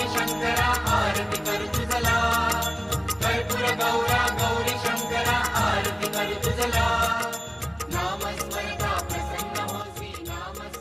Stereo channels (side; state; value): both; identical; correlation 1.00